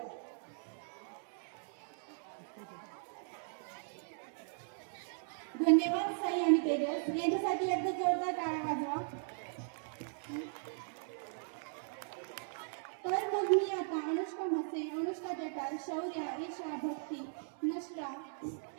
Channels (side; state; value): left; silent; digital silence